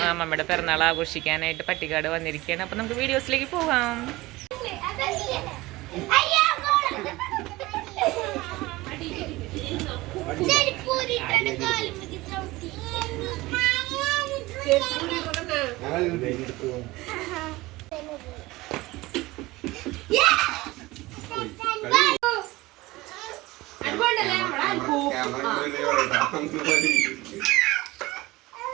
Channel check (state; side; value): quieter; left; 19.9 dB